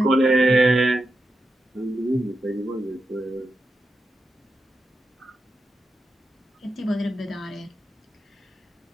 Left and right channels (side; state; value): both; normal; correlation 0.88